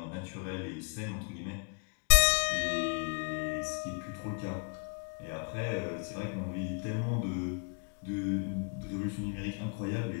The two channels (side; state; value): right; quieter; 37.0 dB